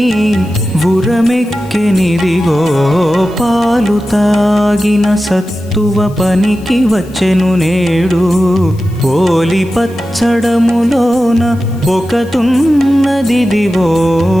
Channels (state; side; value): noise; left; hiss, 26 dB below the sound